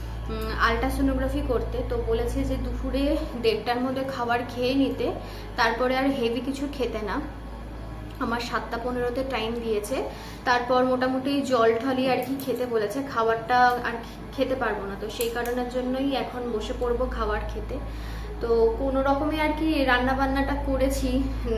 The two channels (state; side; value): identical; both; correlation 1.00